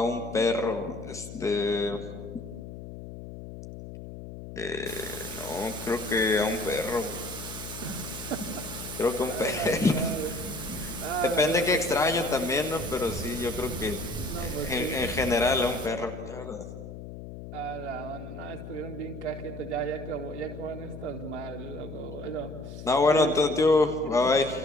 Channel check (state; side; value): noise; left; hum, 11 dB below the sound